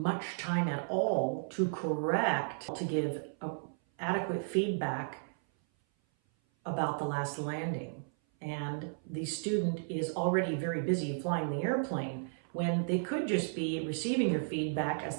time at all to correct, to give adequate feedback about the last landing. And the student is already very busy flying the airplane when they could just be receiving your feedback as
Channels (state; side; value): silent; left; 55 dB below the other